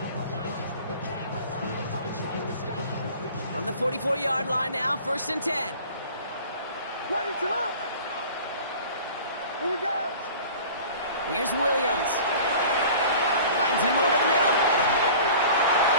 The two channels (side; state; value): both; inverted; correlation -0.43